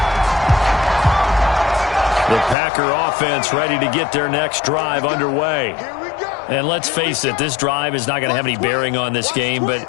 The Packer offense ready to get their next drive underway. Here we go. And let's face it, this drive is not going to have any bearing on this game, but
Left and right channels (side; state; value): right; drops out; at 2.6 s